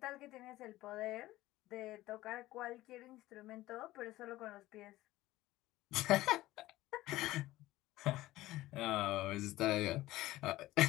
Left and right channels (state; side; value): quieter; right; 16.9 dB